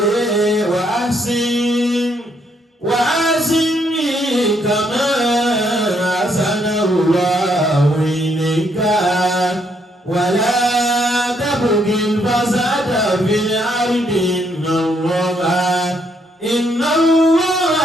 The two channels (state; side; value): normal; both; correlation 0.73